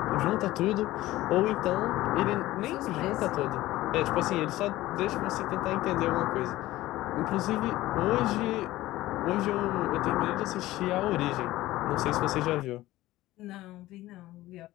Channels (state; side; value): quieter; right; 16.7 dB